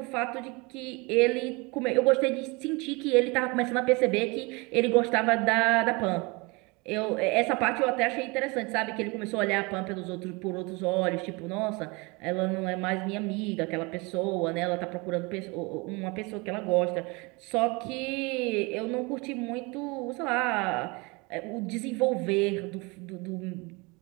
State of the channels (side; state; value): left; quieter; 27.1 dB